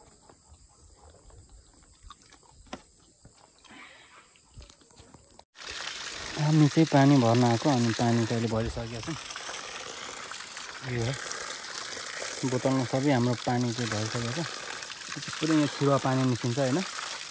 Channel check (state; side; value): identical; both; correlation 1.00